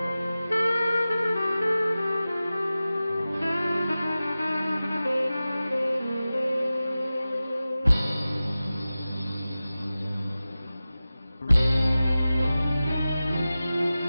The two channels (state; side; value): inverted; both; correlation -0.95